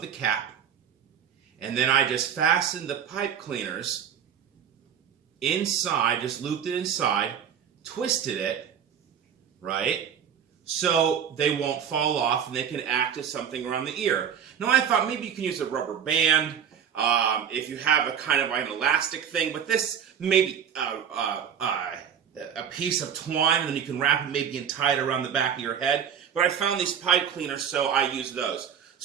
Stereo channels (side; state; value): left; quieter; 8.2 dB